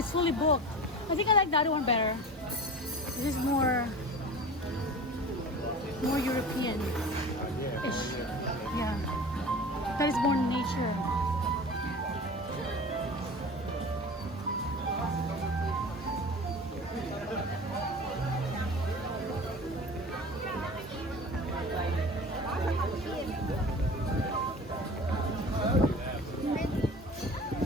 fully booked. I think I like the other one better. This is more European-ish. Yeah. That is more nature.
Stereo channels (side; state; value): both; normal; correlation 0.36